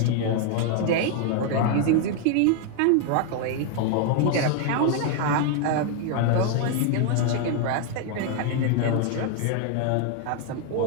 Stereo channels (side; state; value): both; different; correlation 0.00